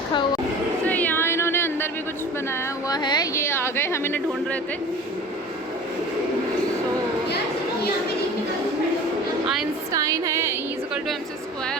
हुआ। तो यहाँ इन्होंने अंदर भी कुछ बनाया हुआ है। ये आ गए, हम इन्हें ढूंढ रहे थे। आइंस्टाइन है, E = mc²,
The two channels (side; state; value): both; normal; correlation 0.40